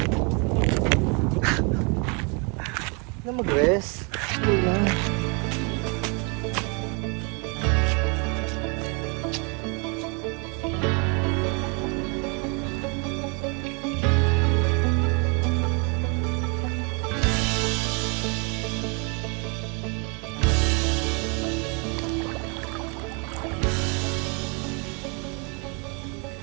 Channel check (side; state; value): left; quieter; 32.7 dB